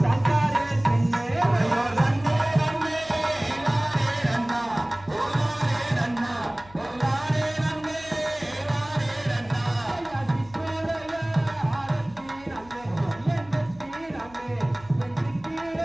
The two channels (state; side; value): noise; left; hum, 23 dB below the sound